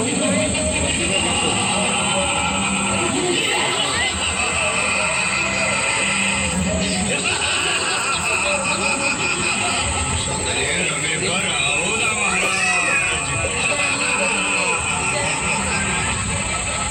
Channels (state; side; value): identical; both; correlation 1.00